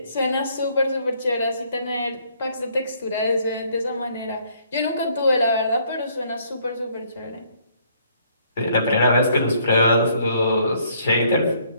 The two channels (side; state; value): both; inverted; correlation -0.65